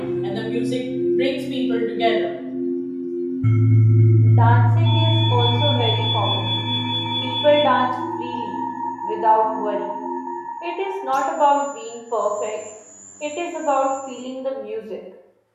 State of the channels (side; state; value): both; identical; correlation 1.00